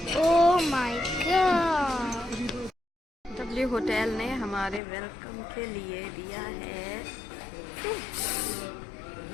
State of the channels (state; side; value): drops out; right; at 4.8 s